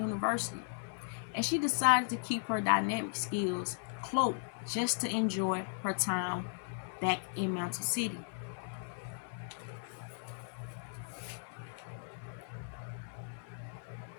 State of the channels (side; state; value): right; silent; 53 dB below the other